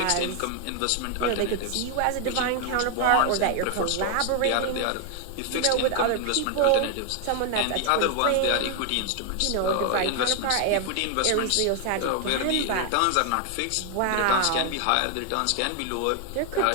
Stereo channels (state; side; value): different; both; correlation 0.00